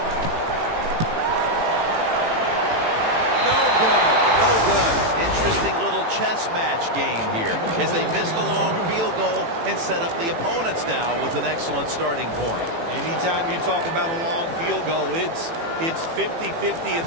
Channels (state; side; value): late; left; 18 ms